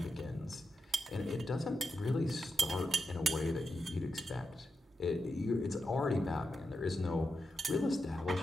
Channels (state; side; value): normal; both; correlation 0.87